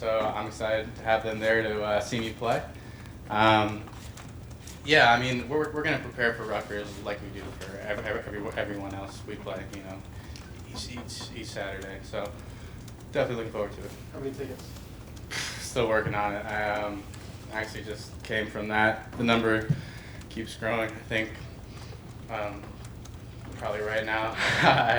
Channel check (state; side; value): identical; both; correlation 1.00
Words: I'm excited to have them there to see me play. Yeah, I mean, we're going to prepare for Rutgers like we do for everyone else we play, you know, each Saturday. So definitely looking forward to it. How many tickets? Still working on it. I actually just came from that. The number keeps growing. I think probably right now I